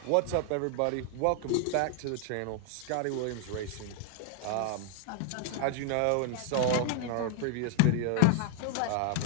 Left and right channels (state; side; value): different; both; correlation 0.00